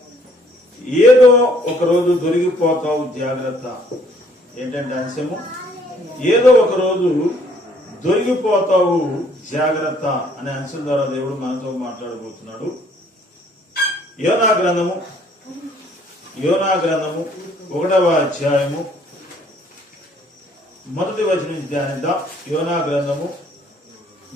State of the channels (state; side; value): normal; both; correlation 0.62